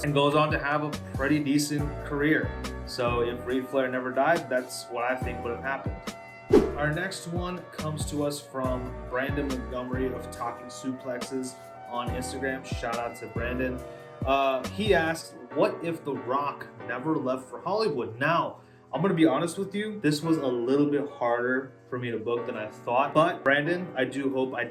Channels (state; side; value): identical; both; correlation 1.00